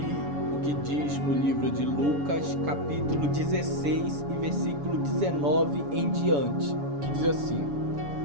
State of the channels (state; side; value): late; left; 7.0 ms